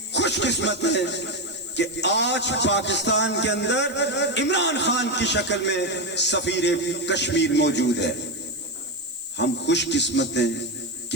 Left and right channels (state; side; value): noise; left; hiss, 20 dB below the sound